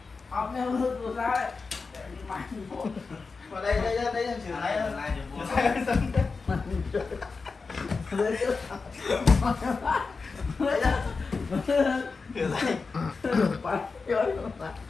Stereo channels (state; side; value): quieter; right; 4.5 dB